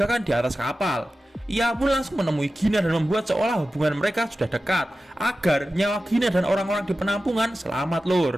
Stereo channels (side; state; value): both; normal; correlation 0.94